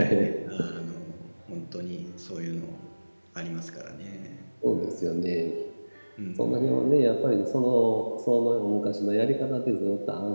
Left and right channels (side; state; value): both; inverted; correlation -1.00